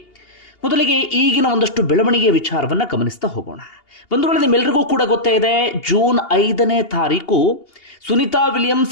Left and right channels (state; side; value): late; right; 2.8 ms